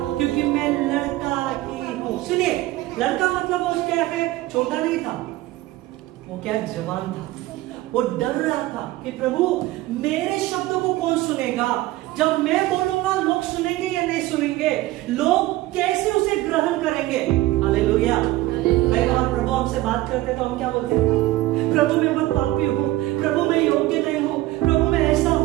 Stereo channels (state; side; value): quieter; left; 17.4 dB